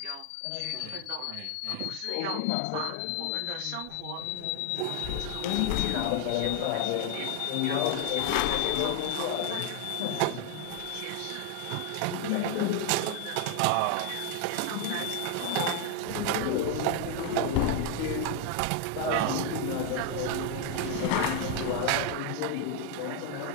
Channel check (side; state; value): both; different; correlation 0.01